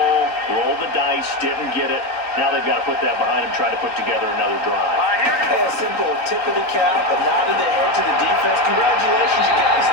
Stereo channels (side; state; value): right; late; 3.8 ms